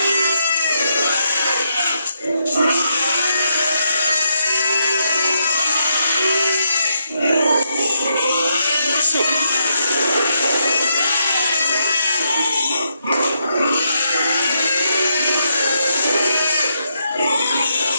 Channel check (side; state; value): both; inverted; correlation -0.80